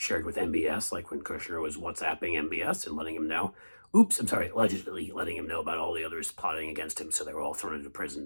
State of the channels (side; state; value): both; inverted; correlation -1.00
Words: with MBS, like when Kushner was WhatsApping MBS and letting him know, allegedly letting him know about all the others plotting against him. So they were all thrown into